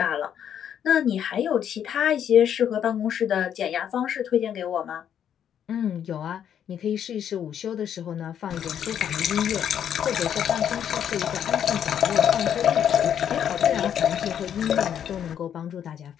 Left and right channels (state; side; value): quieter; right; 9.2 dB